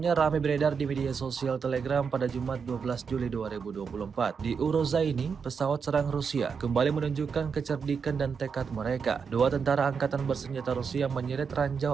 ramai beredar di media sosial Telegram pada Jumat 12 Juli 2024. Di Urozaini, pesawat serang Rusia kembali menunjukkan kecerdikan dan tekad mereka. Dua tentara Angkatan Bersenjata Rusia menyeret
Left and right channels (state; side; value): quieter; left; 6.0 dB